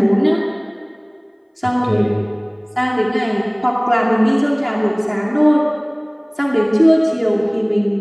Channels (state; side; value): identical; both; correlation 1.00